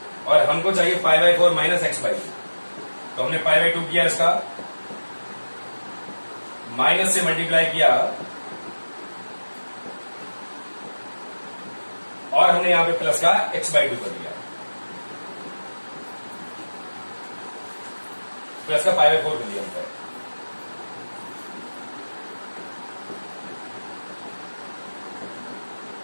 और हमको चाहिए pi by 4 minus x by 2। तो हमने पाई बाई 2 किया, इसका माइनस से मल्टीप्लाई किया, और हमने यहां पे प्लस का एक्स बाई 2 कर दिया, प्लस का पाई बाई 4 कर दिया हमने।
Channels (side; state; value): both; inverted; correlation -1.00